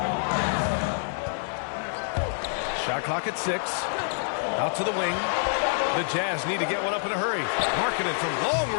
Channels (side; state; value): right; silent; digital silence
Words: Shot clock at 6. Out to the wing. The Jazz need to get one up in a hurry. Markkanen from long